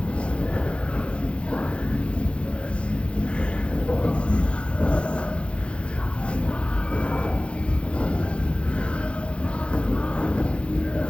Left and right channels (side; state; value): right; late; 0.059 ms